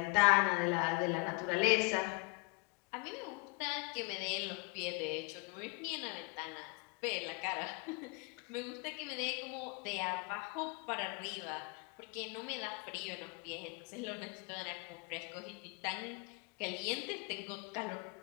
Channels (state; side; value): quieter; right; 28.5 dB